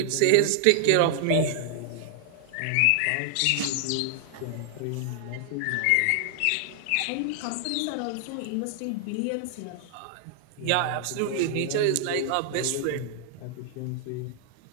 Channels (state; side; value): different; both; correlation 0.00